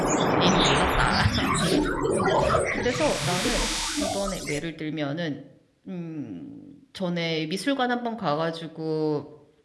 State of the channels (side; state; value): both; identical; correlation 1.00